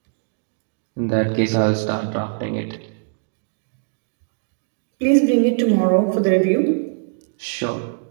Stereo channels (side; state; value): left; silent; digital silence